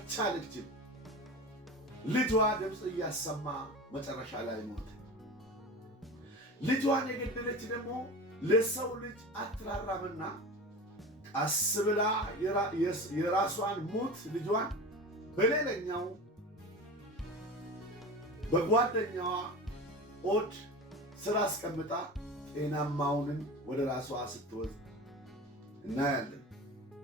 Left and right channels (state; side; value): normal; both; correlation 0.31